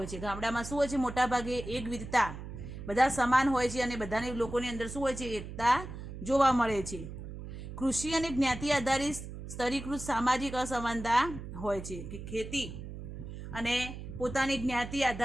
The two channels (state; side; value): noise; right; hum, 10 dB below the sound